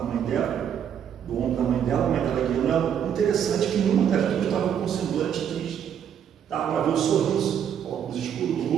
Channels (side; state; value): left; quieter; 8.8 dB